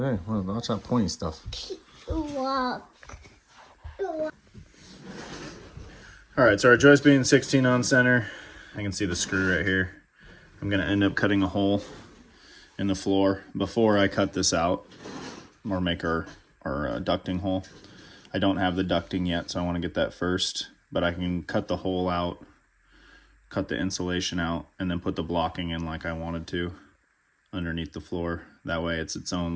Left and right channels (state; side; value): identical; both; correlation 1.00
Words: watch that pointy stuff. Walk. Alright, so our joist being 16 on center, I can see the screw right here. I'm going to end up cutting a hole in the floor before I cut this out, or make our ducting hole. I don't have the ducting yet, so I want to get that first, but I can cut the hole out, cut the insulation out, and then put the blocking in like I wanted to underneath the floor. That way it's its own